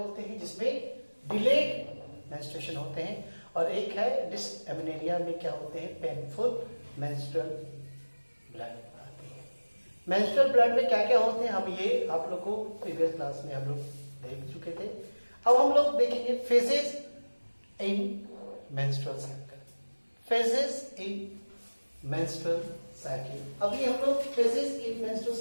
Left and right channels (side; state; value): both; inverted; correlation -1.00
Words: हैं, जिसमें डिलेड मेंस्ट्रुएशन होते हैं। और एक है डिसएमेनोरिया में क्या होते हैं, पेनफुल मेंस्ट्रुअल ब्लड आते हैं। मेंस्ट्रुअल ब्लड में क्या क्या होते हैं, हम ये आप लोग को प्रीवियस क्लास में हम लोग देख चुके थे। अब हम लोग देखेंगे फेजेस इन मेंस्ट्रुअल साइकिल, फेजेस इन मेंस्ट्रुअल साइकिल। अभी हम लोग फेजेस इन मेंस्ट्रुअल